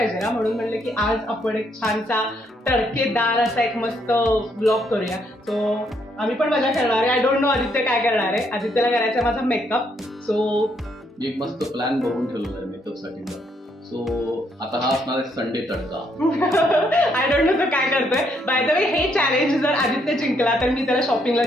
ना, म्हणून म्हणलं की आज आपण एक छानसा तडकेदार असा एक मस्त ब्लॉग करूया. सो आम्ही पण मजा करणार आहे. आय डोंट नो आदित्य काय करणार आहे. आदित्यला करायचा माझा मेकअप. सो एक मस्त प्लॅन बघून ठेवलेला आहे मेकअप साठीचा. सो आता हा असणार आहे Sunday tadka. I don't know तो काय करतोय. बाय द वे हे चॅलेंज जर आदित्य जिंकला तर मी त्याला शॉपिंगला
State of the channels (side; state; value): both; normal; correlation 0.73